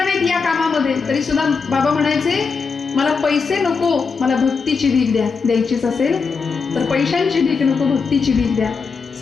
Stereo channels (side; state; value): right; quieter; 5.1 dB